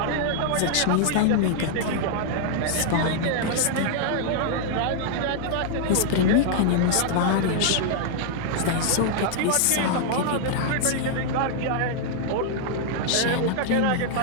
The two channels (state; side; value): different; both; correlation -0.01